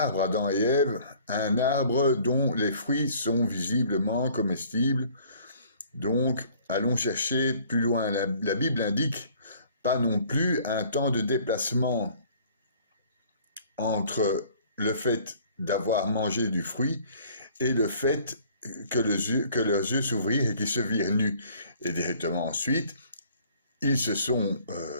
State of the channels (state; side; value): inverted; both; correlation -0.55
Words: Adam et Ève, un arbre dont les fruits sont visiblement comestibles. Donc, allons chercher plus loin. La Bible indique pas non plus un temps de déplacement entre le fait d'avoir mangé du fruit et le fait que leurs yeux s'ouvrirent et qu'ils se virent nus. Et directement ensuite, ils se sont